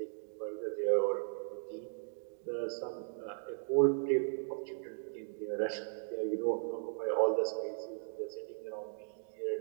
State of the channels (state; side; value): silent; left; digital silence